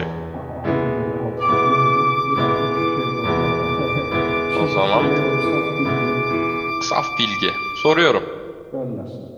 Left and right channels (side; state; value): both; identical; correlation 1.00